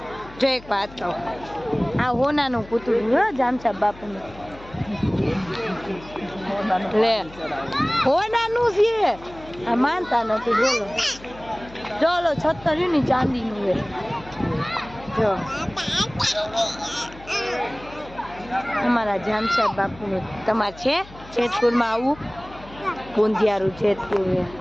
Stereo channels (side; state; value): left; noise; hum, 19 dB below the sound